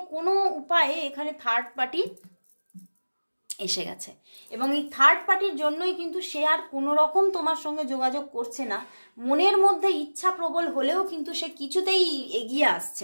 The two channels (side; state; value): both; inverted; correlation -1.00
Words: কোনো উপায়ে এখানে থার্ড পার্টি এসে গেছে। এবং এই থার্ড পার্টির জন্যই কিন্তু সে আর কোনো রকম তোমার সঙ্গে যোগাযোগ করছে না। মনের মধ্যে ইচ্ছা প্রবল হলেও কিন্তু সে কিছুতেই এগিয়ে আসছে